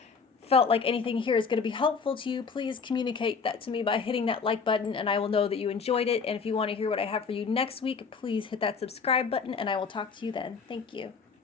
felt like anything here is going to be helpful to you, please communicate that to me by hitting that like button and I will know that you enjoyed it. And if you want to hear what I have for you next week, please hit that subscribe button and I will talk to you then. Thank you.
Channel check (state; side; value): quieter; right; 5.4 dB